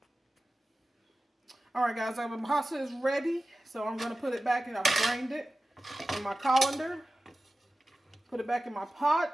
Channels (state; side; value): normal; both; correlation 0.95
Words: Alright guys, my pasta is ready. So I'm going to put it back, and I've drained it in my colander. Put it back in my